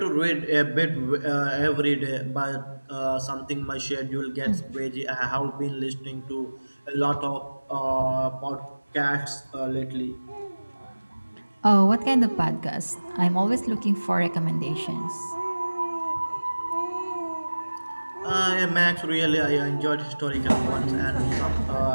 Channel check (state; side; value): inverted; both; correlation -1.00